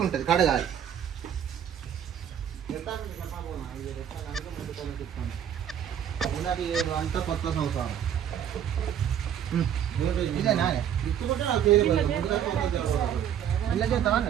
ఉంటుంది, కడగాలి. అంతా కొత్త సంవత్సరం ఇదేనా ఇలా చేద్దామా?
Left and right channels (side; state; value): left; quieter; 9.4 dB